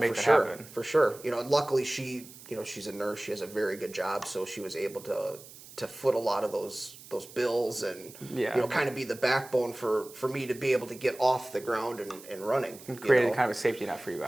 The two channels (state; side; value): noise; right; hiss, 18 dB below the sound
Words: it happen. For sure. You know, and luckily she's a nurse. She has a very good job, so she was able to foot a lot of those bills and you know, kind of be the backbone for me to be able to get off the ground and running. Created kind of a safety net for you